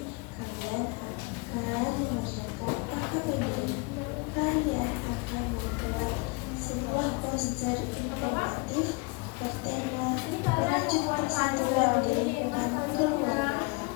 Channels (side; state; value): right; quieter; 28.6 dB